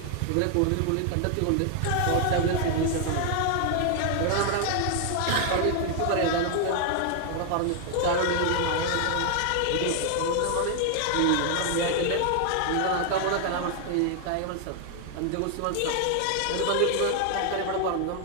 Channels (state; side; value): different; both; correlation 0.00